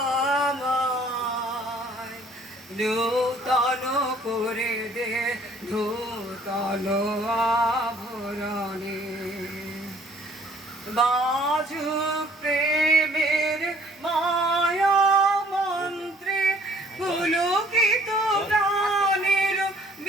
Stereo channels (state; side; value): normal; both; correlation 0.58